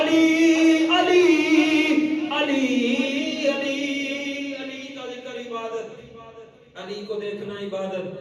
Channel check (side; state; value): both; identical; correlation 1.00